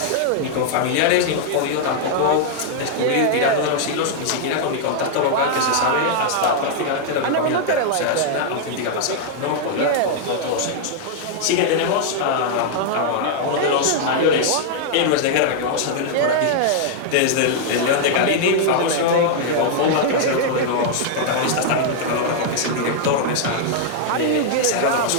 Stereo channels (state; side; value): different; both; correlation -0.01